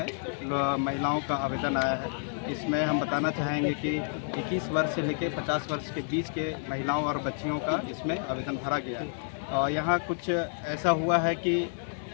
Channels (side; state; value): right; silent; digital silence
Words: महिलाओं का आवेदन आया है। इसमें हम बताना चाहेंगे कि 21 वर्ष से लेकर 50 वर्ष के बीच के महिलाओं और बच्चियों का इसमें आवेदन भरा गया है। और यहाँ कुछ ऐसा हुआ है कि